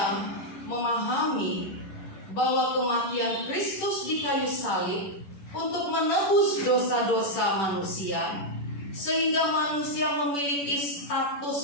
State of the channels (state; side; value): late; right; 10 ms